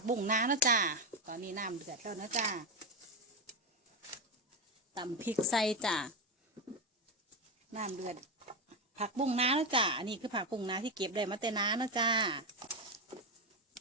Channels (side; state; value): both; normal; correlation 0.11